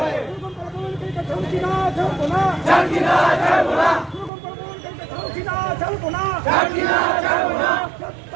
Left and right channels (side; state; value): left; drops out; at 4.3 s